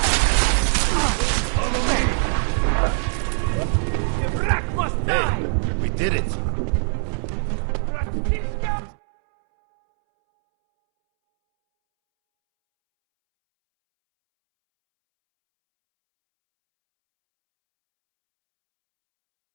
Hey, we did it.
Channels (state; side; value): silent; left; 64 dB below the other